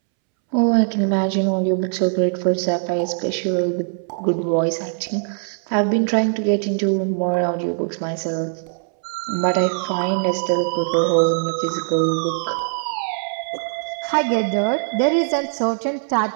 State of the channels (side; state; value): left; silent; 65 dB below the other